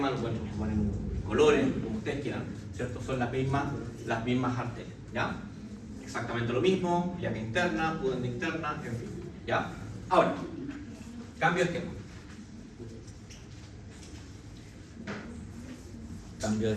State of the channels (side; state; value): both; identical; correlation 1.00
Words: lo pueden transformar en colores, como ustedes quieran, ¿cierto? Son las mismas arterias, ¿ya? Exactamente lo mismo, ilíaca interna, pudenda interna, en fin, ¿ya? Ahora, cambio de esquema. Cambio de